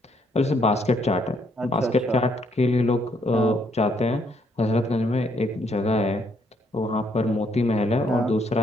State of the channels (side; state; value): both; normal; correlation 0.71